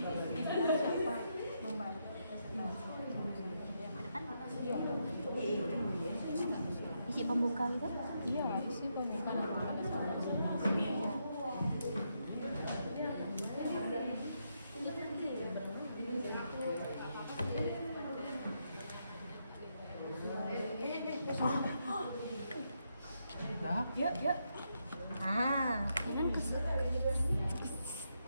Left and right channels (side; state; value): both; inverted; correlation -0.81